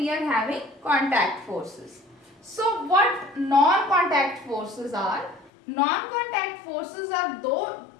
are having contact forces. So what non-contact forces are? Non-contact forces are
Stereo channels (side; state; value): right; drops out; at 5.5 s